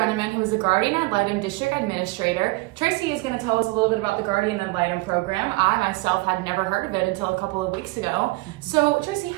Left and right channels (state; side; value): quieter; left; 23.2 dB